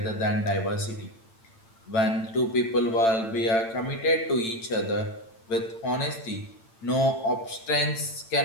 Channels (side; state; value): right; late; 8.9 ms